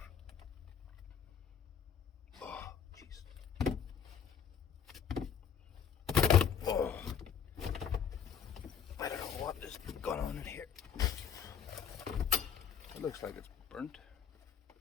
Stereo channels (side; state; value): right; quieter; 8.1 dB